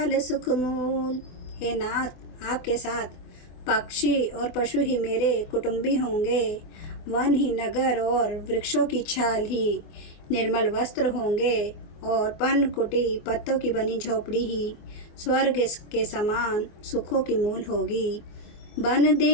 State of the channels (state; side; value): late; right; 24 ms